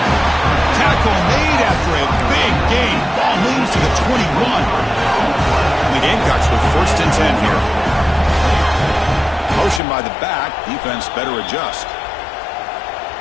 Tackle made after a big gain. Ball moves to the 21. And the Gamecocks with 1st and 10 here. Motion by the back. Defense better adjust.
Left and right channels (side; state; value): right; drops out; at 9.8 s